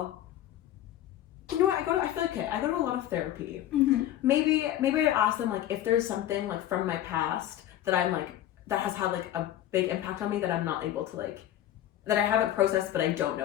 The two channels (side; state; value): right; quieter; 12.5 dB